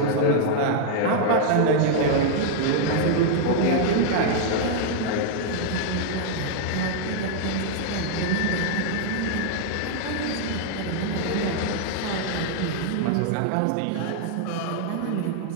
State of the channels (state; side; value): different; both; correlation 0.00